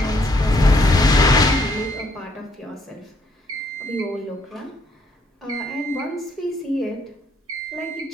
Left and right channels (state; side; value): normal; both; correlation 0.69